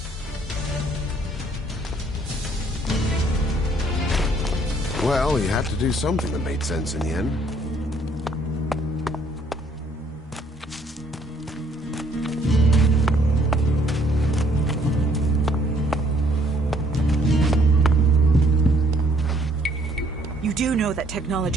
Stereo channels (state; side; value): normal; both; correlation 0.64